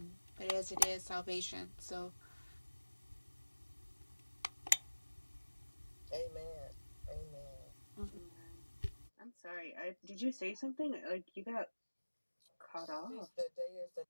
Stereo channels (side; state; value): both; inverted; correlation -1.00